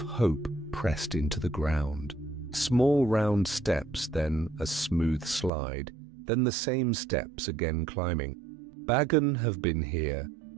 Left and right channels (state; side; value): drops out; left; at 5.5 s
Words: pressed into the ground. Small round steps, then a smooth slide, then the same steps again climbing. Bagon have been here,